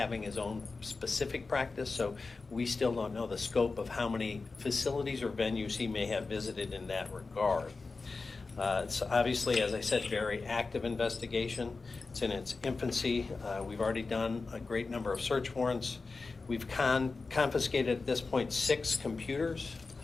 his own specific practice. So we still don't know the scope of how many facilities or venues he may have visited in that regard. It's obviously, as I said, very active investigation. It's in its infancy. We've already done a great number of search warrants. We've confiscated at this point 6 computers,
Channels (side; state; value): right; quieter; 4.0 dB